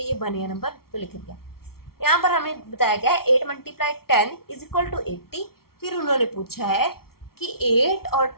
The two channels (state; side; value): late; right; 0.94 ms